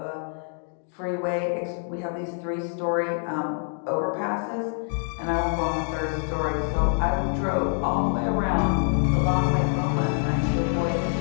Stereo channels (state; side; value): silent; right; 61 dB below the other